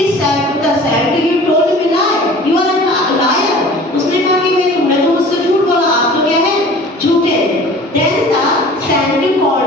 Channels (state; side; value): normal; both; correlation 0.44